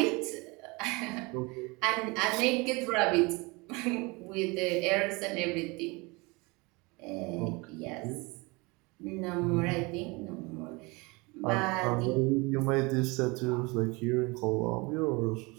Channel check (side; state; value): left; quieter; 26.3 dB